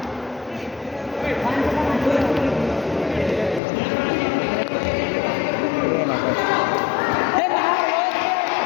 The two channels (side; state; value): right; drops out; at 3.6 s